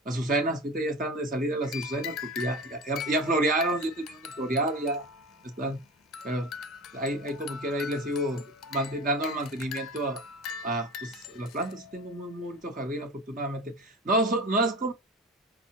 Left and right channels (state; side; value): normal; both; correlation 0.31